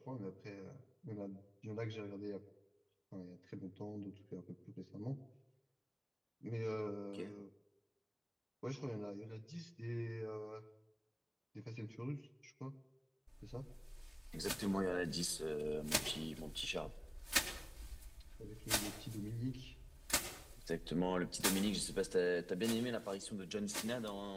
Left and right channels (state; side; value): identical; both; correlation 1.00